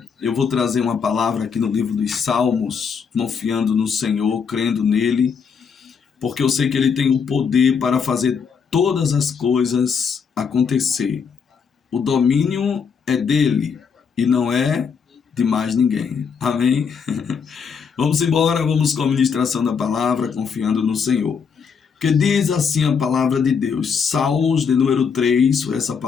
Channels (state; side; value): quieter; right; 6.2 dB